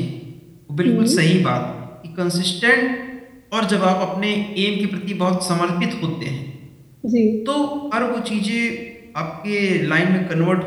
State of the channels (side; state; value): both; identical; correlation 1.00